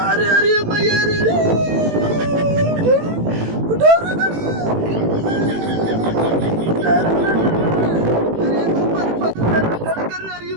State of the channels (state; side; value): late; left; 18 ms